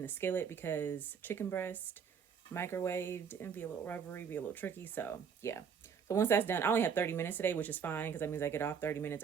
the skillet, because chicken breast microwaved and be a little rubbery, be a little tricky. So yeah. So once that's done, I only have 30 minutes today, which is fine, because that means I get off 30 minutes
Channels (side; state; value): left; quieter; 6.9 dB